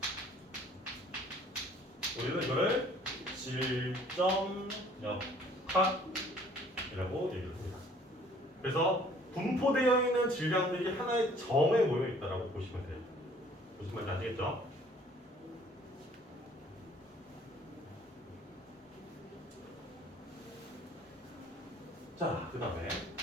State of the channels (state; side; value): normal; both; correlation 0.56